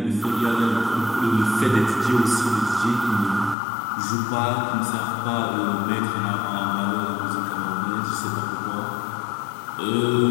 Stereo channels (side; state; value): right; drops out; at 3.6 s